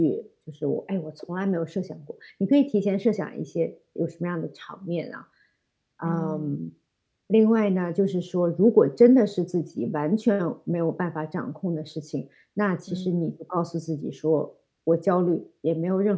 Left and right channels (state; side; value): identical; both; correlation 1.00